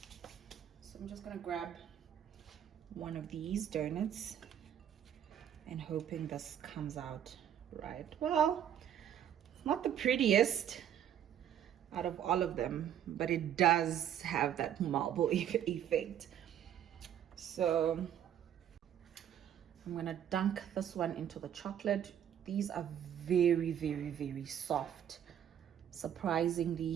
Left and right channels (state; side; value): quieter; left; 9.9 dB